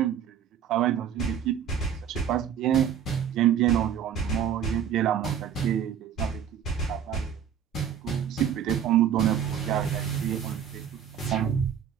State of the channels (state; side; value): quieter; left; 8.8 dB